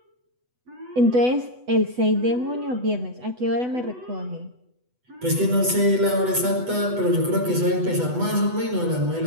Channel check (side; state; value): left; late; 8.1 ms